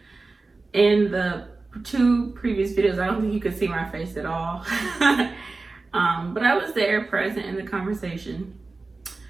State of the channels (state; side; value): quieter; left; 3.6 dB